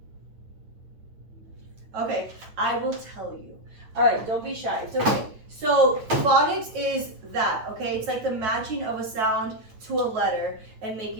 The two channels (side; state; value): left; late; 9.3 ms